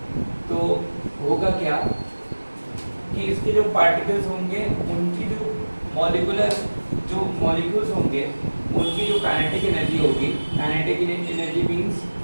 तो होगा क्या कि इसके जो पार्टिकल्स होंगे उनकी जो मॉलिक्यूल्स होंगे उनकी जो काइनेटिक एनर्जी होगी, काइनेटिक एनर्जी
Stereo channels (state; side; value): inverted; both; correlation -1.00